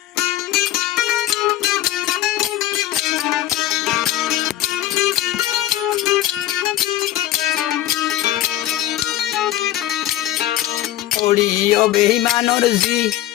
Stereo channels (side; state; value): right; quieter; 13.7 dB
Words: ওড়িও বেইমানর জি